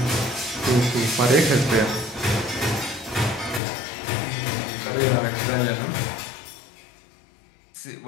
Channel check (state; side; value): drops out; right; at 3.6 s